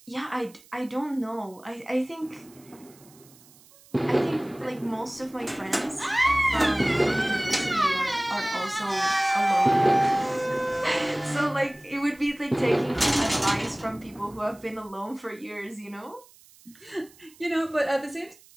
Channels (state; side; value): noise; right; hiss, 26 dB below the sound